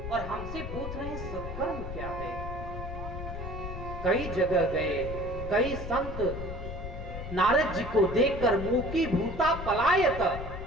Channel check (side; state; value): left; noise; rumble, 7 dB below the sound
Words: और हमसे पूछ रहे हैं सत्कर्म क्या है। कई जगह गए, कई संत नारद जी को देखकर मुकी भूता पलायत,